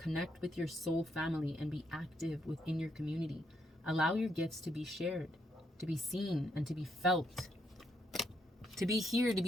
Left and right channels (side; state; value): both; normal; correlation 0.76